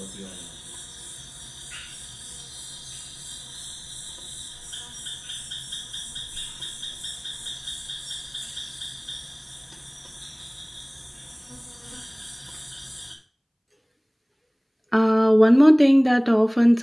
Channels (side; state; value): both; identical; correlation 1.00